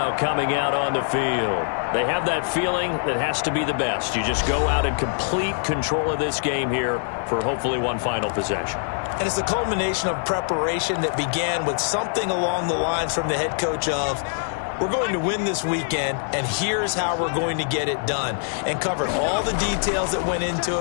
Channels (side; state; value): right; silent; digital silence